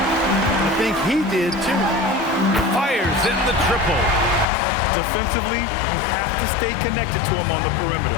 I think he did, too. Fires in the triple. Defensively, you have to stay connected to him on the perimeter.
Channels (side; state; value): right; drops out; at 4.5 s